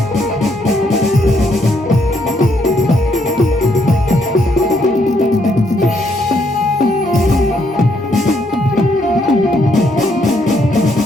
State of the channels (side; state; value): both; normal; correlation 0.73